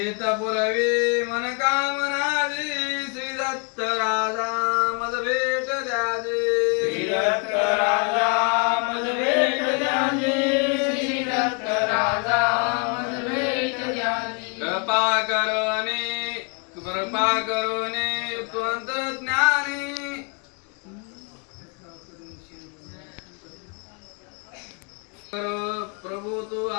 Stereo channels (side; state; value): right; quieter; 35.3 dB